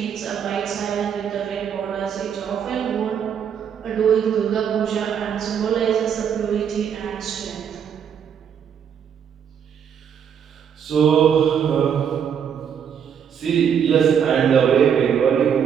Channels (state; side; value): quieter; left; 7.9 dB